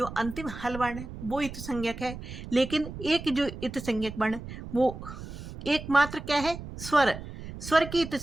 अंतिम हल वर्ण है वो इत संज्ञक है, लेकिन एक जो इत संज्ञक वर्ण वो एकमात्र क्या है? स्वर। स्वर की इत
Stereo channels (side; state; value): right; noise; rumble, 11 dB below the sound